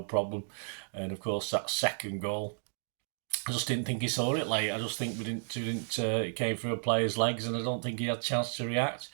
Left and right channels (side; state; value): left; silent; digital silence